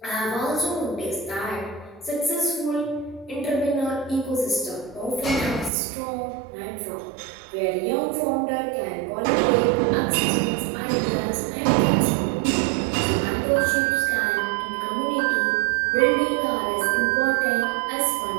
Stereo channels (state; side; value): drops out; left; at 5.7 s